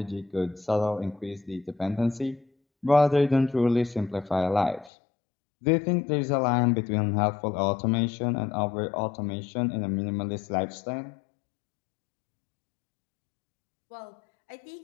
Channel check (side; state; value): right; drops out; at 4.9 s